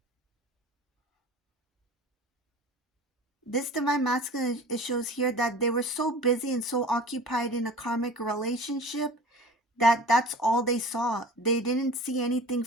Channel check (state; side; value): normal; both; correlation 0.40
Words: This divine masculine, it shows here that they were so busy and so occupied in a karmic relationship that that's all they saw. They didn't see anything